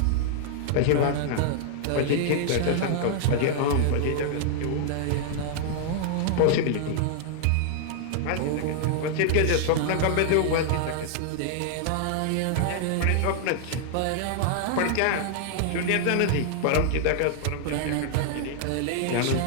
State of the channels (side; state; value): both; different; correlation -0.01